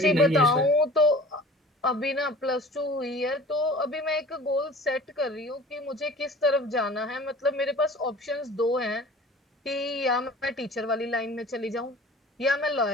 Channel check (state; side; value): normal; both; correlation 0.44